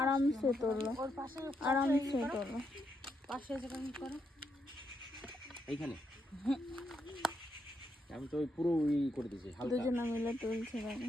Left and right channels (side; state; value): both; normal; correlation 0.80